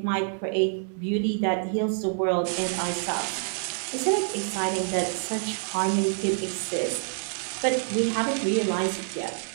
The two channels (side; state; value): left; silent; 60 dB below the other